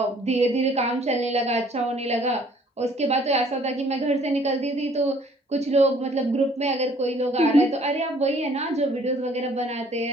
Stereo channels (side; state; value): both; normal; correlation 0.58